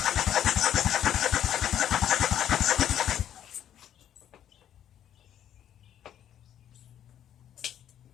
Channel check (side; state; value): right; quieter; 10.5 dB